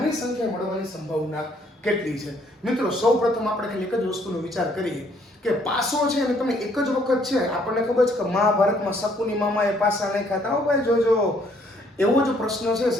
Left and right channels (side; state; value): both; normal; correlation 0.66